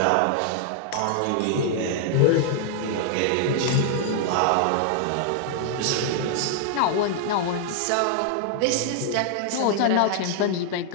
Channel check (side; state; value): both; different; correlation -0.01